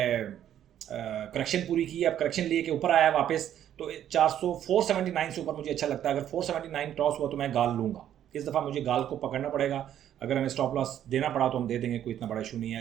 करेक्शन पूरी की है, अब करेक्शन लिए के ऊपर आया है वापस। तो 479 से ऊपर मुझे अच्छा लगता है। अगर 479 क्रॉस हुआ तो मैं गाल लूँगा। इस दफ़ा मुझे गाल को पकड़ना पड़ेगा। अगर हमें स्टॉप लॉस देना पड़ा तो हम दे देंगे, कोई इतना बड़ा इशू नहीं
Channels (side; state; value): left; quieter; 10.7 dB